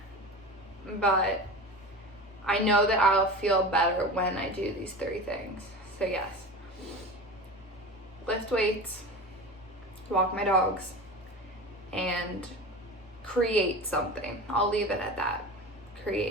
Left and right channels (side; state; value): both; normal; correlation 0.31